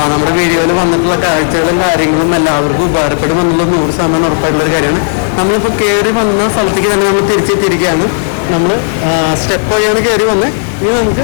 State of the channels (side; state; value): right; silent; digital silence